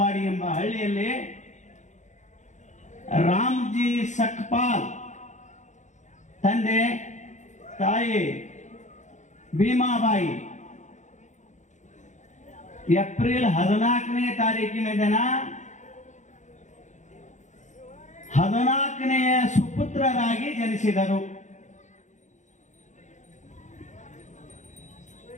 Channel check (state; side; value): late; right; 0.35 ms